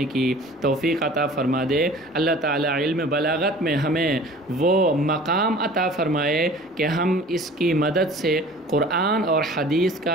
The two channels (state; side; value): normal; both; correlation 0.45